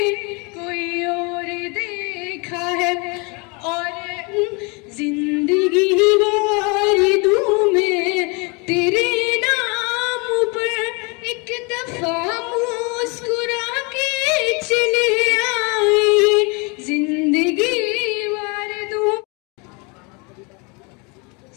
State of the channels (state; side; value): quieter; right; 30.4 dB